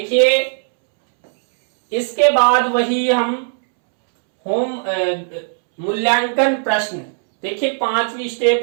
इसके बाद वही हम होम मूल्यांकन प्रश्न। देखिए 5वीं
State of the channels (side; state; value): left; silent; 68 dB below the other